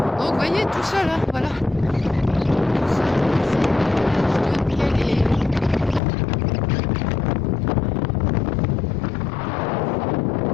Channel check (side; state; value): right; drops out; at 6.0 s